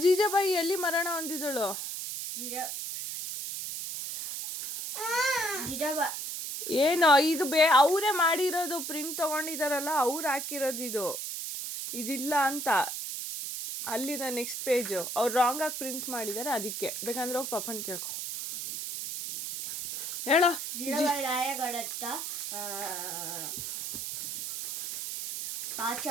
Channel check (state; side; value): noise; right; hiss, 5 dB below the sound